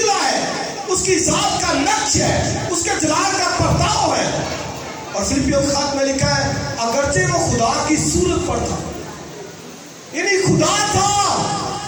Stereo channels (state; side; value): identical; both; correlation 1.00